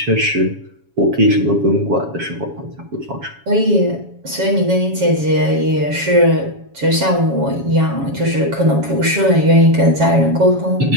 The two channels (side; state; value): left; late; 7.2 ms